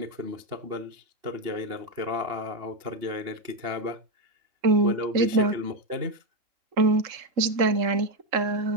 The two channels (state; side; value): late; left; 3.7 ms